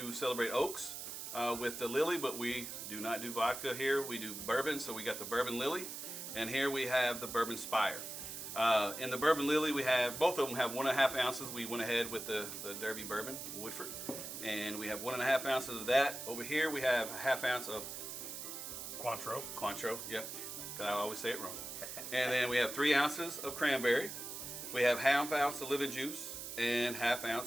celebrate Oaks with the Lily, but we do not do vodka here. We do bourbon, so we got the Bourbon Lily, and here we have the Bourbon Spire. In the Bourbon Lily, we have, both of them have 1.5 ounces. We went ahead with the Derby Bourbon, Woodford, and we have 1.5 ounces of that. Over here, we have a 1/2 ounce of Cointreau, yep. I always say it wrong. And then we have 3 ounces of cranberry. We have 1/2 ounce of lemon juice and 1/2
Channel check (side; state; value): right; noise; hiss, 8 dB below the sound